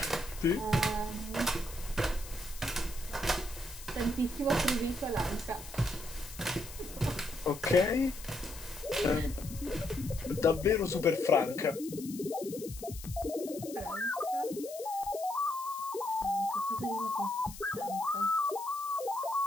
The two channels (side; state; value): left; noise; hiss, 14 dB below the sound